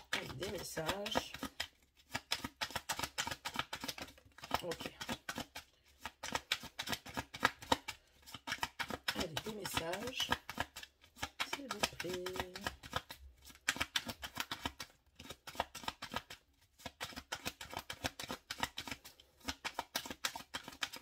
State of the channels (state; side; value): identical; both; correlation 1.00